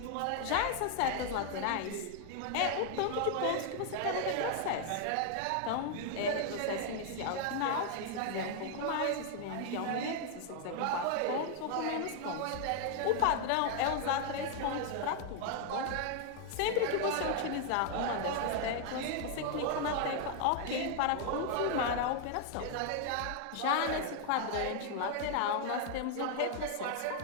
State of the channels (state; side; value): different; both; correlation 0.00